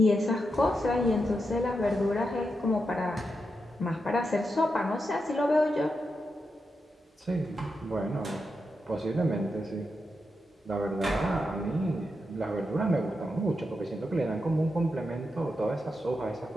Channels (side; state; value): both; normal; correlation 0.86